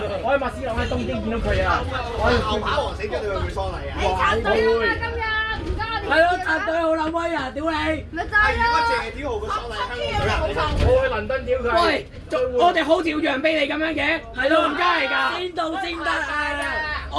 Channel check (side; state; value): both; identical; correlation 1.00